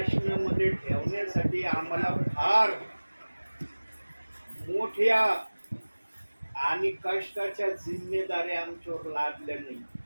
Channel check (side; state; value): both; inverted; correlation -1.00